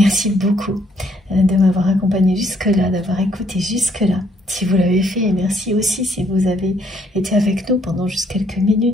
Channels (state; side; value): normal; both; correlation 0.68